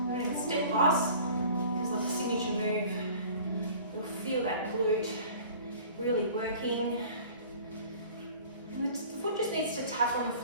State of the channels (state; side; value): inverted; both; correlation -0.46